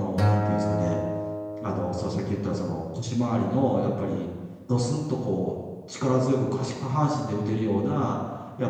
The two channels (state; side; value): identical; both; correlation 1.00